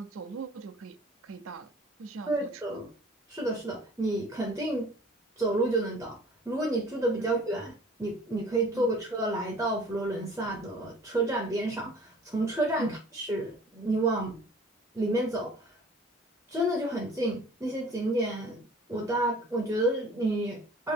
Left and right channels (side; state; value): both; normal; correlation 0.49